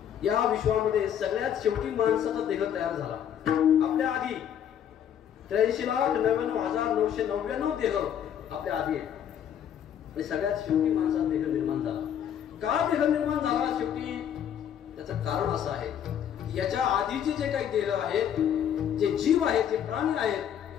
या विश्वामध्ये सगळ्यात शेवटी माणसाचा देह तयार झाला. आपल्या आधी 83,99,999 देह आपल्या आधी आहे. आणि सगळ्यात शेवटी माणसाचा देह निर्माण झाला. का देह निर्माण झाला शेवटी? त्याचं कारण असं आहे की याच्या आधीचे जे काही देह आहेत, जे जीव आहेत, जे प्राणी आहेत,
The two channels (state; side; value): quieter; right; 9.3 dB